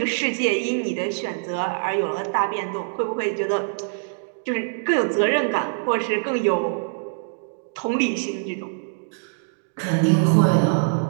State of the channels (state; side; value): silent; left; digital silence